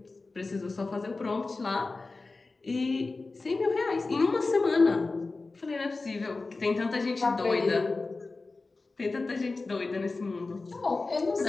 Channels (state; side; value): quieter; right; 3.6 dB